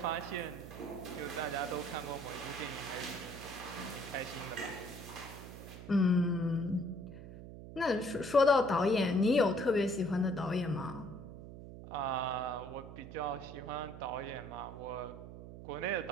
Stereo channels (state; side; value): noise; right; hum, 13 dB below the sound